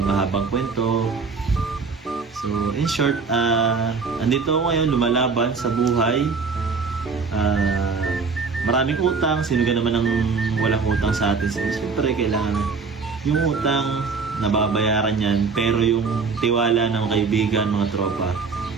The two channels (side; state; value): left; quieter; 4.8 dB